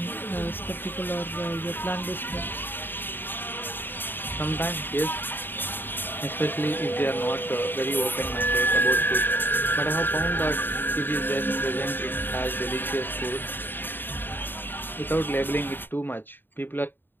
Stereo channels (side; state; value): right; late; 0.095 ms